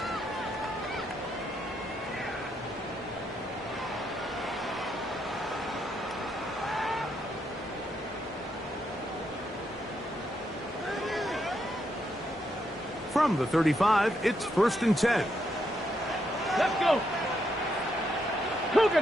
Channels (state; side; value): normal; both; correlation 0.79